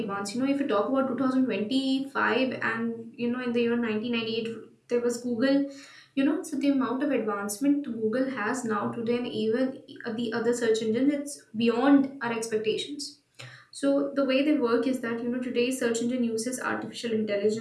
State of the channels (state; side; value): identical; both; correlation 1.00